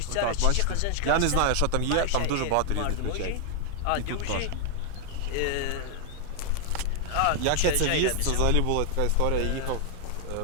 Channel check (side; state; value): both; different; correlation 0.00